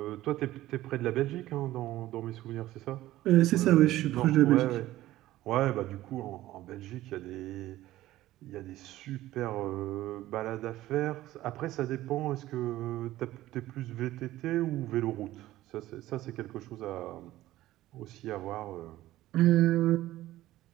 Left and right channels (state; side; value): quieter; left; 15.5 dB